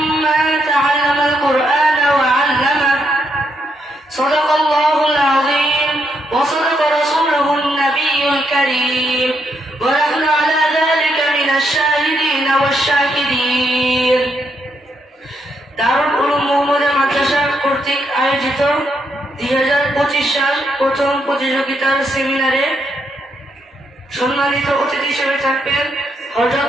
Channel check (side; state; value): both; normal; correlation 0.78